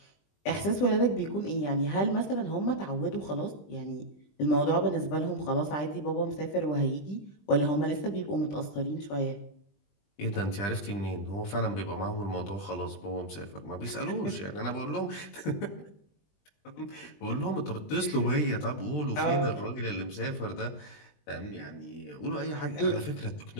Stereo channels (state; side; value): late; right; 20 ms